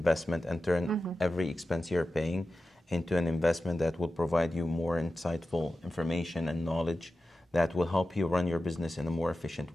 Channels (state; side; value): normal; both; correlation 0.93